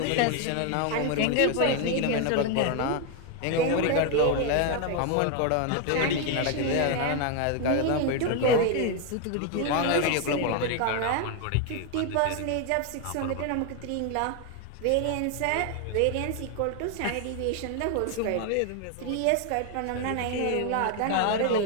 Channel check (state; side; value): different; both; correlation 0.01